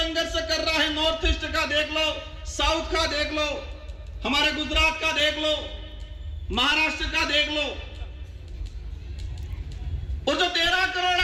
कर रहा है। नॉर्थ ईस्ट का देख लो, साउथ का देख लो, हमारे गुजरात का देख लो, महाराष्ट्र का देख लो। और जो 13 करोड़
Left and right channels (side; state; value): both; identical; correlation 1.00